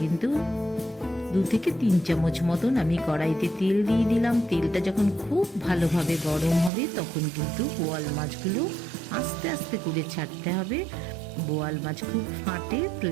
2 থেকে 3 চামচ মতন আমি কড়াইতে তেল দিয়ে দিলাম। তেলটা যখন খুব ভালোভাবে গরম হবে তখন কিন্তু বোয়াল মাছগুলো আস্তে আস্তে করে ছাড়তে হবে। বোয়াল মাছ খুব ফাটে,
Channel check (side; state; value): left; drops out; at 6.7 s